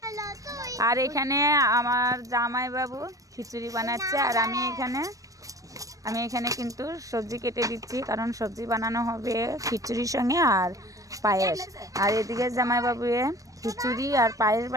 আর এখানে আমার জামাইবাবু খিচুড়ি বানাচ্ছে, আর আমি এখানে কিন্তু সবজি কেটে দিচ্ছি, কারণ সবজি বানানো হবে খিচুড়ির সঙ্গে আর পায়েস। আর এদিকে জামাইবাবু খিচুড়ি আর পায়েস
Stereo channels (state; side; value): late; left; 0.16 ms